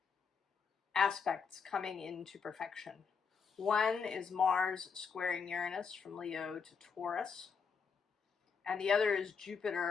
aspects coming into perfection. One is Mars squaring Uranus from Leo to Taurus, and the other is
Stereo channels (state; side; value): quieter; right; 5.9 dB